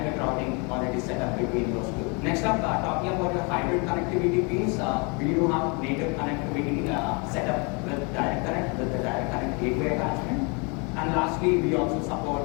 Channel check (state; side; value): quieter; right; 32.1 dB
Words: routing already set up between those two. Next up, talking about your hybrid connectivity piece, we do have native connectivity set up with direct connect, with the direct connect gateway attachment. And lastly, we also